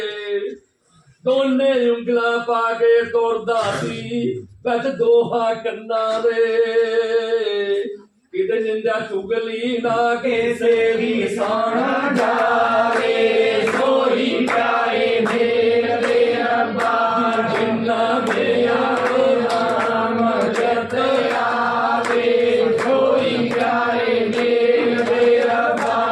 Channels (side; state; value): both; identical; correlation 1.00